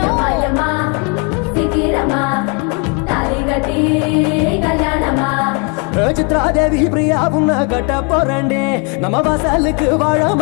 yama, sikirama, taligati kalyanama. Chitradevi Priya உன்ன கட்ட போறண்டே நம்ம வாசலுக்கு வாழ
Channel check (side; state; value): right; quieter; 33.6 dB